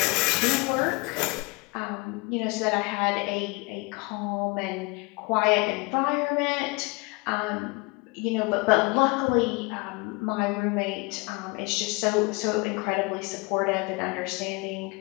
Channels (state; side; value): quieter; right; 27.7 dB